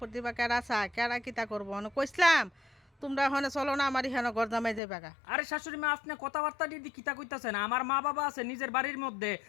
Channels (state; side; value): drops out; right; at 4.8 s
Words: বা কেডা চায়, কেডা কিতা করবো। হনে কইসলাম তোমরা হনে চলো না আমার এখানে ঘর জামাই যাবে গা। আরে শাশুড়ি মা, আপনি কথাবার্তা দিদি কিতা কইতাছেন? আমার মা বাবা আছে নিজের বাড়ির মধ্যে,